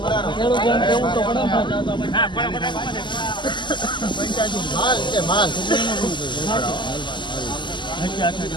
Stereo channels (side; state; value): right; late; 0.22 ms